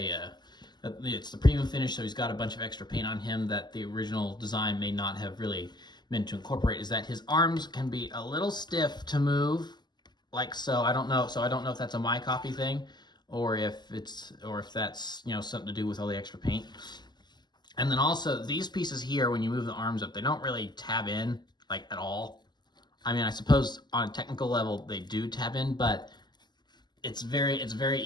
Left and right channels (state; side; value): late; right; 0.21 ms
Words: the premium finish, so he's got a bunch of extra paint on him that the original design may not have really meant to incorporate, is that his arms can be a little stiff to move, like so. I don't know if that's a my copy thing or if that's, you know, something to do with all the extra paint. And then also these pieces here, when you move the arms up, they don't really tab in like at all. I mean, I suppose on a technical level they do tab in, but it's very